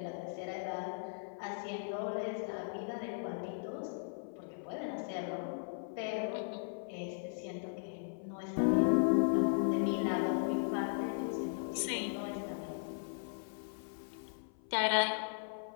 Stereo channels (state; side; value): silent; right; 53 dB below the other